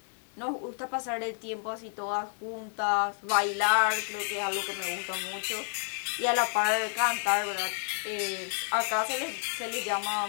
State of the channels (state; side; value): silent; right; 58 dB below the other